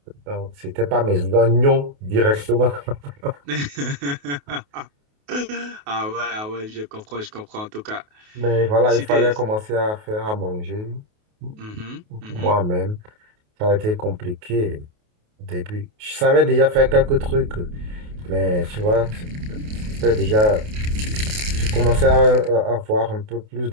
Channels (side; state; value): left; late; 28 ms